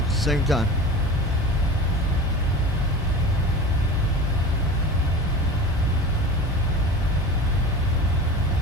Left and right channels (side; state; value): both; normal; correlation 0.34